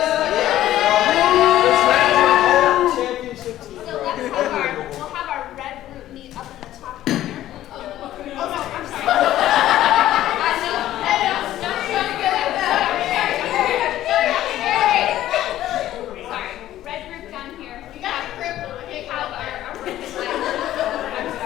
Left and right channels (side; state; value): right; quieter; 13.4 dB